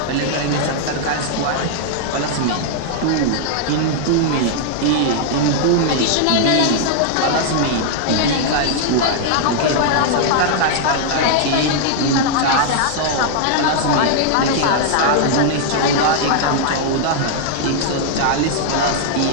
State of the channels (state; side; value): different; both; correlation -0.01